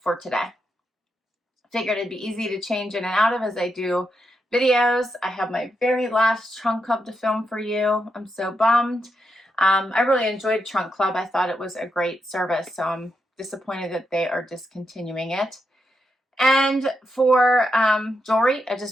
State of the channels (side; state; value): both; normal; correlation 0.84